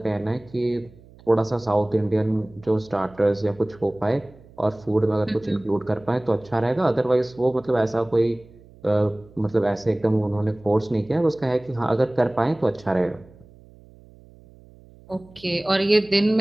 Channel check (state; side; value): noise; right; hum, 24 dB below the sound